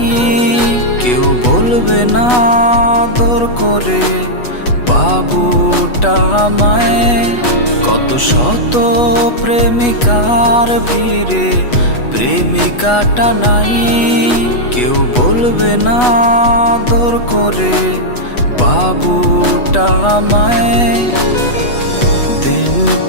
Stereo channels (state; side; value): late; right; 8.2 ms